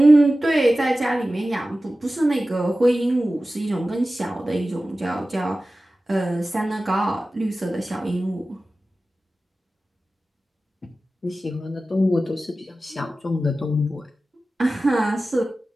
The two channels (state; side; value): normal; both; correlation 0.95